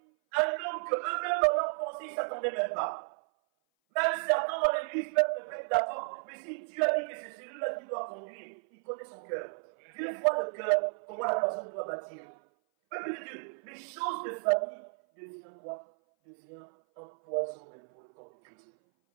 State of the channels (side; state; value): left; silent; 56 dB below the other